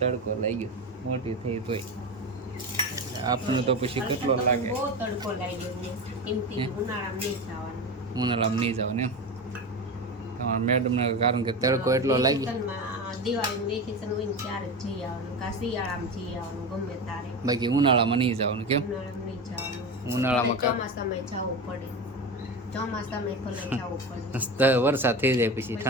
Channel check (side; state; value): both; normal; correlation 0.23